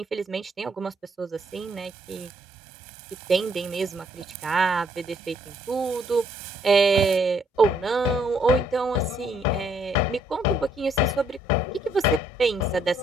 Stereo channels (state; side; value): normal; both; correlation 0.68